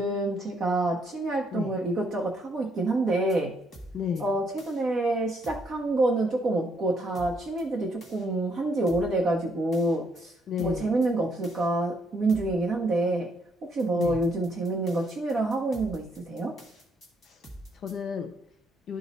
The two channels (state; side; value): normal; both; correlation 0.72